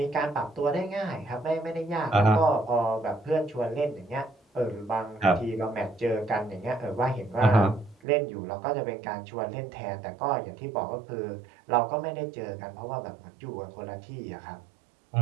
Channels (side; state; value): left; drops out; at 8.0 s